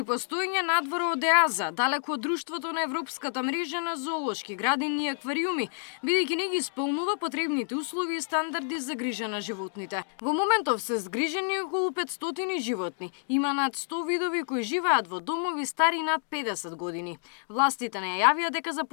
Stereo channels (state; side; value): silent; right; digital silence